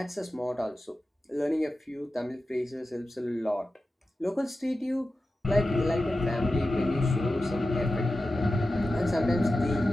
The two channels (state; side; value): normal; both; correlation 0.93